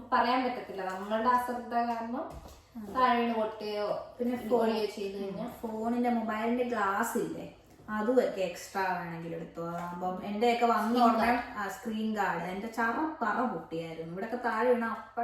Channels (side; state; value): both; identical; correlation 1.00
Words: പറയാൻ പറ്റത്തില്ല, നമ്മളുടെ അശ്രദ്ധ കാരണം താഴെ പൊട്ടുകയോ പിന്നെ ഫോളിയോ ചെയ്ത് കഴിഞ്ഞാൽ. ഫോണിന്റെ മൊബൈലിന്റെ ഗ്ലാസ് ഇല്ലേ, അതുമൊക്കെ എക്സ്ട്രാ വേണമെങ്കിൽ എടുത്തു. അപ്പം എന്റെയൊക്കെ വന്ന ഉടനെ സ്ക്രീൻ ഗാർഡ് എന്റെ പറ പൊട്ടിയായിരുന്നു. ഇവിടെയൊക്കെ താഴെ വീണ